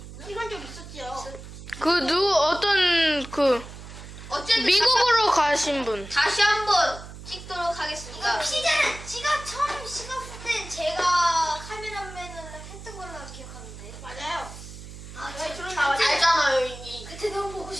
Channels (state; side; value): noise; right; hum, 14 dB below the sound